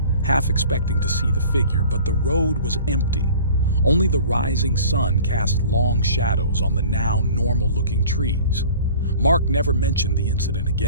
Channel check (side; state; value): both; inverted; correlation -0.46